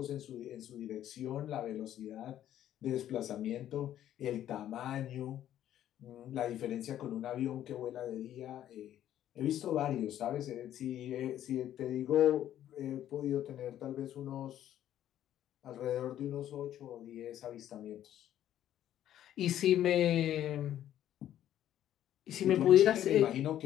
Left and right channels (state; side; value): quieter; right; 11.7 dB